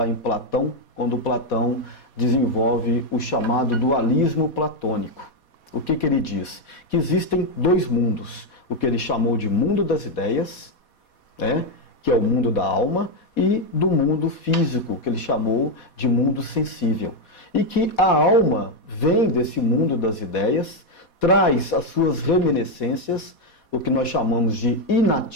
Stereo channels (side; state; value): right; late; 4.2 ms